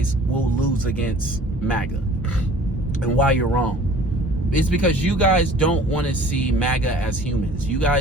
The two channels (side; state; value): both; normal; correlation 0.49